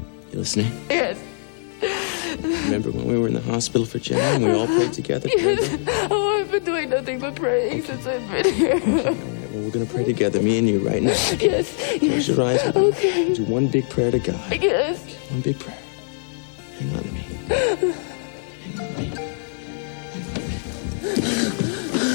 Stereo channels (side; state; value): right; silent; digital silence